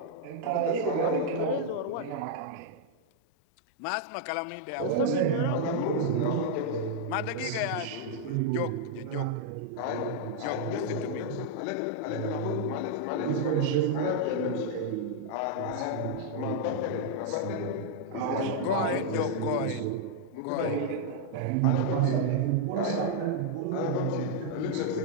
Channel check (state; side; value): different; both; correlation -0.01